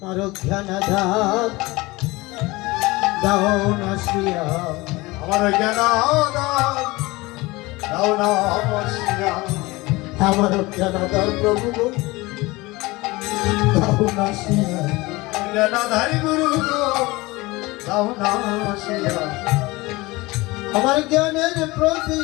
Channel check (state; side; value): quieter; right; 21.9 dB